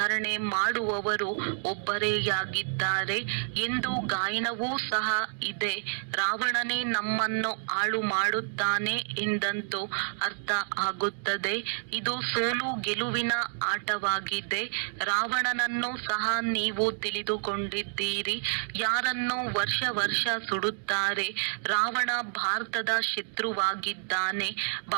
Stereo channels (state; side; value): silent; left; digital silence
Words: ಮಾಡುವವರು ಒಬ್ಬರೇಯಾಗಿದ್ದಾರೆ ಎಂದು ಗಾಯನವೂ ಸಹ ಇದೆ. ರಾವಣನೇ ನಮ್ಮನ್ನು ಹಾಳು ಮಾಡುತ್ತಾನೆ ಎಂದಂತೂ ಅರ್ಥ ಆಗುತ್ತದೆ. ಇದು ಸೋಲು ಗೆಲುವಿನ ಆಟವಾಗಿದೆ. ರಾವಣನನ್ನು ಸಹ ನೀವು ತಿಳಿದುಕೊಂಡಿದ್ದೀರಿ. ಯಾರನ್ನು ವರ್ಷ ವರ್ಷ ಸುಡುತ್ತಾರೆ. ರಾವಣ ಭಾರತದ ಶತ್ರುವಾಗಿದ್ದಾನೆ.